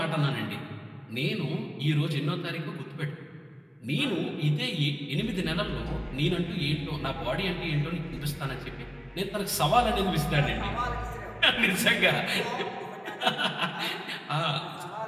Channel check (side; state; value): both; identical; correlation 1.00